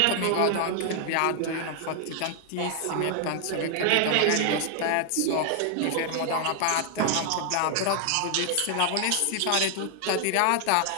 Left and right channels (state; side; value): different; both; correlation 0.00